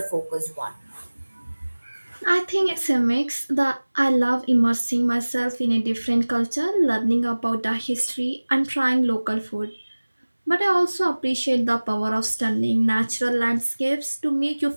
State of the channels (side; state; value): both; inverted; correlation -1.00